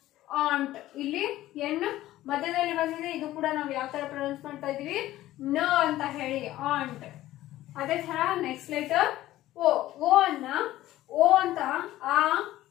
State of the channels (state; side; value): quieter; right; 15.1 dB